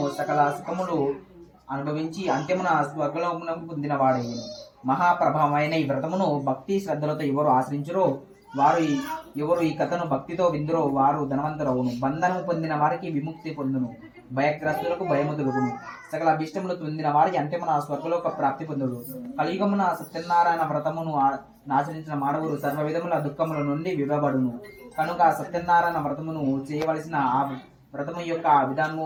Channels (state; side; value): identical; both; correlation 1.00